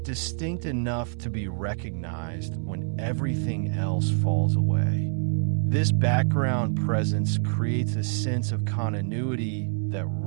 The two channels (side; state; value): left; silent; digital silence